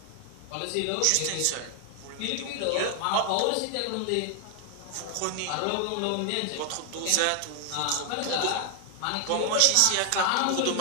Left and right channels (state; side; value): different; both; correlation 0.00